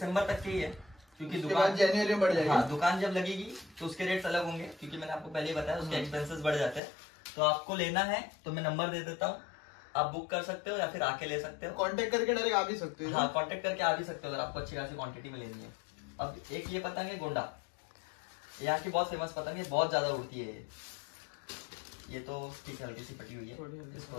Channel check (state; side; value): drops out; right; at 6.8 s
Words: तक के ही है, क्योंकि दुकान जनवरी में बढ़ जाएगी। हाँ, दुकान जब लगेगी तो उसके रेट्स अलग होंगे, क्योंकि मैंने आपको पहले ही बताया उसके एक्सपेंसेस बढ़ जाते हैं। तो आपको लेना है तो मैं नंबर दे देता हूँ, आप बुक कर सकते हो या फिर आके ले सकते हो। कांटेक्ट करके डायरेक्ट आ भी सकते हो। हाँ, कांटेक्ट करके आ भी सकते हो अगर आपको अच्छी खासी क्वांटिटी में लेनी है। अब एक ये पतंग है गोंडा, यहाँ की बहुत फेमस पतंग है, बहुत ज्यादा उड़ती है ये तो ठीक है, हल्की सी पटी हुई है।